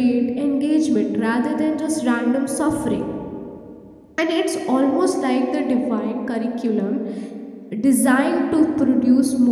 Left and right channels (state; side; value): identical; both; correlation 1.00